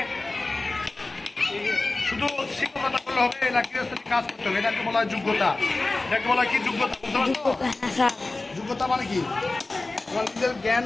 শুধু শিক্ষকতা করলে হবে না, গৃহস্থলী কাজ করতে হবে। এটাকে বলা হয় যোগ্যতা। এটাকে বলা হয় কি? যোগ্যতা, বুঝতে পারছো? হ্যাঁ স্যার। যোগ্যতা মানে কি? তোমার নিজের জ্ঞান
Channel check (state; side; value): quieter; right; 3.2 dB